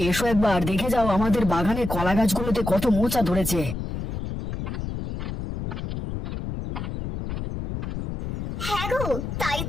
এসো, একবার দেখে যাও আমাদের বাগানে কলা গাছগুলোতে কত মোচা ধরেছে। হ্যাঁ গো, তাই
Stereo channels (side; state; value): left; noise; rumble, 5 dB below the sound